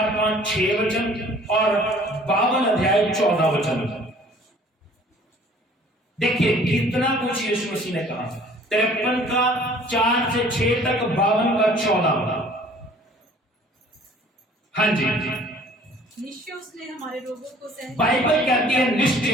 5, 6 वचन और 52 अध्याय 14 वचन। देखिए कितना कुछ यीशु मसीह ने कहा। 53 का 4 से 6 तक, 52 का 14। हाँ जी, निश्चय उसने हमारे रोगों को सह, बाइबल कहती है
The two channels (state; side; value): normal; both; correlation 0.52